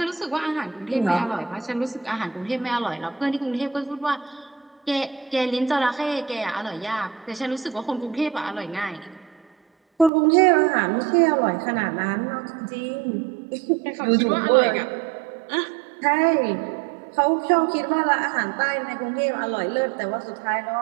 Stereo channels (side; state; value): left; drops out; at 10.1 s